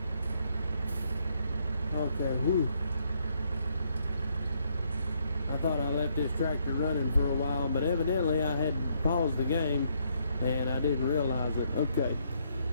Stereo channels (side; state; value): both; inverted; correlation -0.72